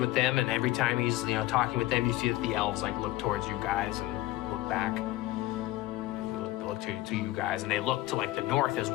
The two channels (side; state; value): right; quieter; 17.4 dB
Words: them, and every time he's talking with them, you see that the elves like look towards you guys and look back. They look to you guys, and they look to like the north as